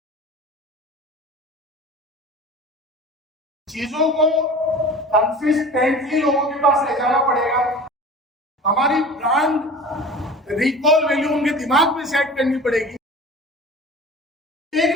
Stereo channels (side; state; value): both; normal; correlation 0.39